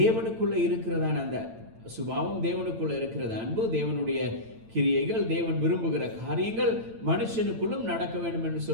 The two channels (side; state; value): left; late; 8.9 ms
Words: இருக்கிறதான அந்த சுபாவம், தேவனுக்குள்ள இருக்கிற அன்பு, தேவனுடைய கிரியைகள், தேவன் விரும்புகிற காரியங்கள் மனுஷனுக்குள்ளும் நடக்க வேண்டும் என்று